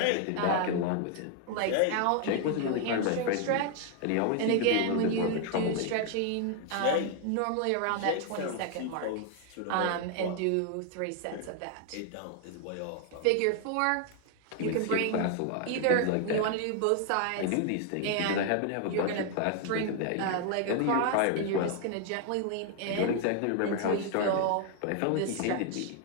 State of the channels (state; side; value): different; both; correlation 0.00